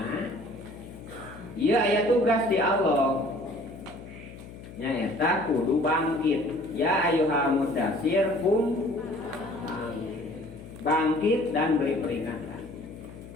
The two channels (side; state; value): left; noise; hum, 15 dB below the sound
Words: ieu aya tugas di Allah. Nyaeta kudu bangkit. Ya ayyuhal mudatsir qum bangkit dan beri peringatan.